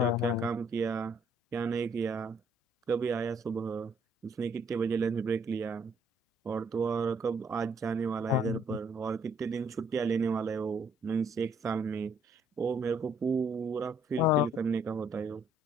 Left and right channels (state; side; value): normal; both; correlation 0.66